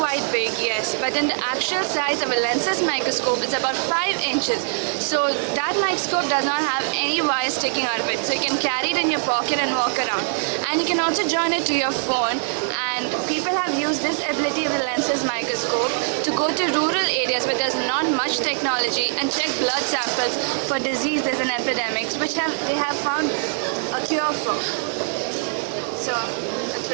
big, yes, but then the actual size of a lensless microscope is about 5 inches. So that microscope does not have any wires sticking out of it. So you can carry it in your pocket and walk around. And you can also join it to your phone, and people have used this ability of the lensless microscope to go to rural areas where there's not much technology and check blood samples for diseases and epidemics, which they have found a cure for. So that's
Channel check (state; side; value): silent; left; digital silence